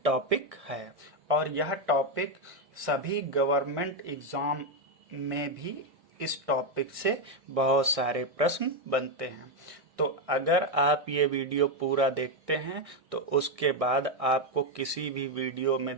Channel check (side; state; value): left; late; 1.6 ms